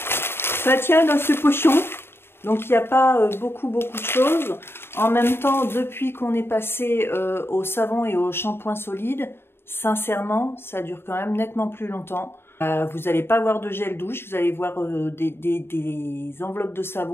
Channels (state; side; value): late; right; 0.11 ms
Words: ça tient dans ce pochon, donc il n'y a pas beaucoup de choses. En même temps, depuis qu'on est passé au savon et au shampoing solide, sincèrement, ça dure quand même nettement plus longtemps. Vous n'allez pas voir de gel douche, vous allez voir des enveloppes de